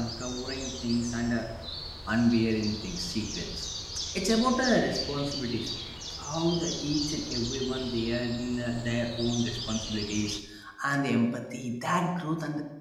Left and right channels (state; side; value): identical; both; correlation 1.00